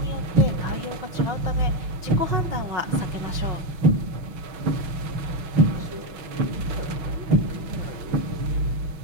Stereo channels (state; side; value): late; left; 6.2 ms